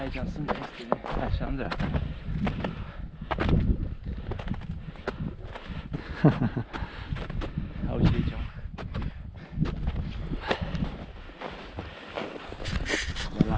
sunt chestiile, așa în dreapta. Auzi aici, mă. De la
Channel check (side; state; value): both; identical; correlation 1.00